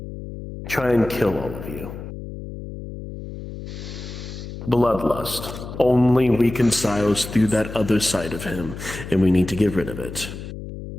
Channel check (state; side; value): noise; left; hum, 10 dB below the sound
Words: try and kill all of you. Bloodlust only reconciles through that other side of him, and we need to get rid of it.